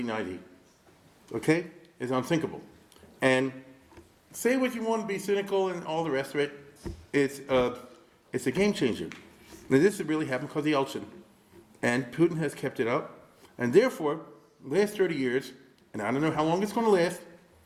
okay, it's unthinkable. And say what you want to be cynical and all the rest of it. It's a game changer. Now, this has really happened because of Yeltsin, and Putin has kept it up, and therefore, the last 30 years, and I don't know how long it's going to last,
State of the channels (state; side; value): identical; both; correlation 1.00